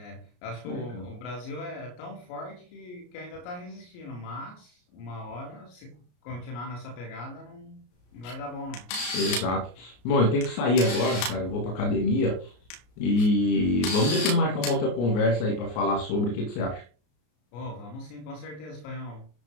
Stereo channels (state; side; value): late; right; 33 ms